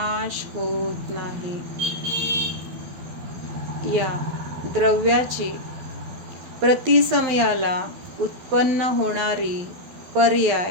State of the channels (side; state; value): left; late; 12 ms